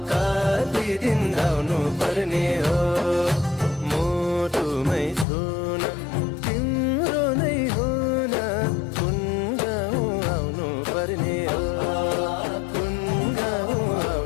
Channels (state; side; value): drops out; right; at 5.2 s